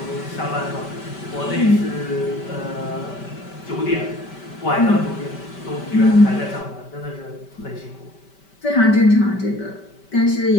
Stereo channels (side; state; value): right; late; 5.1 ms